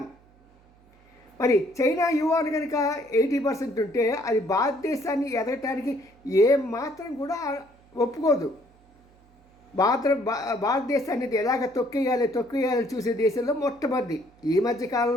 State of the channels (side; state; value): right; noise; hum, 30 dB below the sound